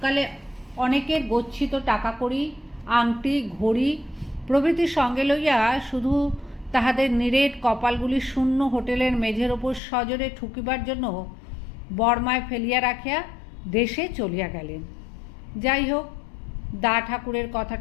অনেকের গচ্ছিত টাকা কড়ি, আংটি, ঘড়ি প্রভৃতি সঙ্গে লইয়া শুধু তাহাদের নিরেট কপালগুলি শূন্য হোটেলের মেঝের ওপর সজোরে ঠুকিবার জন্য বর্মায় ফেলিয়া রাখিয়া দেশে চলিয়া গেলেন। যাই হোক, দা ঠাকুরের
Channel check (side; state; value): right; drops out; at 9.8 s